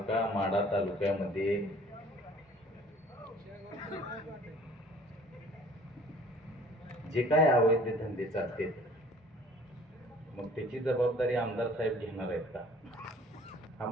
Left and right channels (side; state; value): both; normal; correlation 0.52